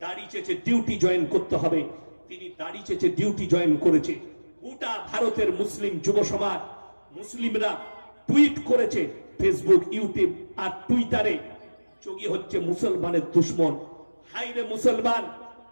দাড়ি চেয়েছে ডিউটি জয়েন করতে হবে, তিনি দাড়ি চেয়েছে ডিউটি জয়েন করেছে। গোটা ভারতের মুসলিম যুব সমাজ, মুসলিমরা টুইট করেছে ফেসবুক, ইউটিউব আর টুইটারে, যোগী হচ্ছে মুসলমানের দুশ্মন। হাইরে মুসলমান,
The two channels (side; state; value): both; inverted; correlation -1.00